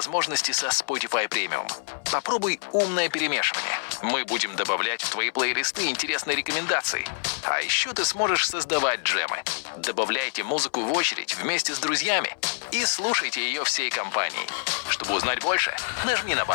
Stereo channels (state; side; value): silent; right; 61 dB below the other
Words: со Spotify Premium. Попробуй умное перемешивание. Мы будем добавлять в твои плейлисты интересные рекомендации. А еще ты сможешь создавать джемы. Добавляйте музыку в очередь вместе с друзьями и слушайте ее всей компанией. Чтобы узнать больше, нажми на